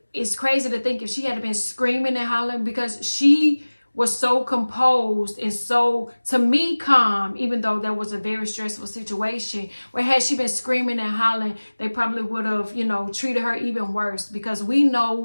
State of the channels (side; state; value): both; inverted; correlation -1.00